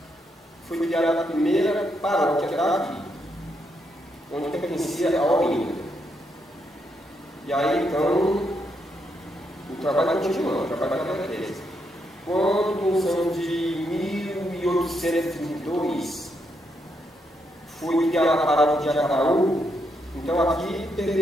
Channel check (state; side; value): normal; both; correlation 0.79